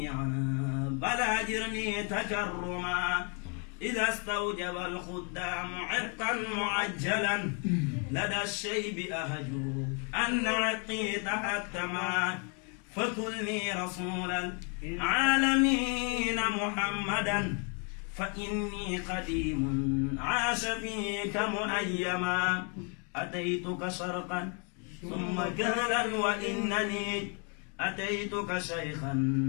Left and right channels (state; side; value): quieter; right; 38.0 dB